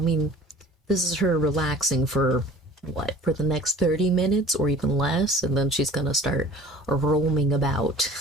this is her relaxing for what? For the next 30 minutes or even less, and then she's gonna start roaming about.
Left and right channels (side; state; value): both; normal; correlation 0.46